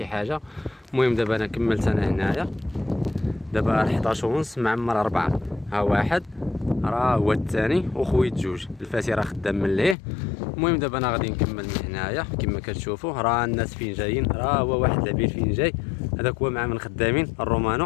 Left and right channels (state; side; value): drops out; right; at 10.0 s